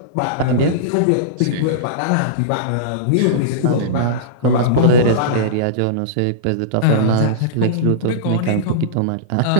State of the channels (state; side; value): different; both; correlation -0.04